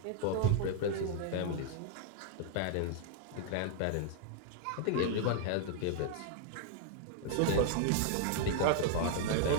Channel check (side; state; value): both; different; correlation 0.00